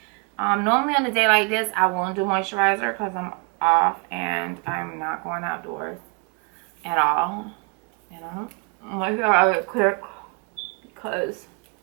Normally on a day like this, I won't do moisturizer because I'm off and I'm not going outdoors at all. And I'm moisturizer quick because,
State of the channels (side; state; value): left; quieter; 31.5 dB